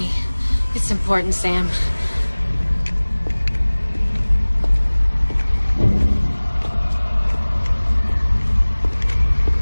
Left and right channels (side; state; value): both; inverted; correlation -1.00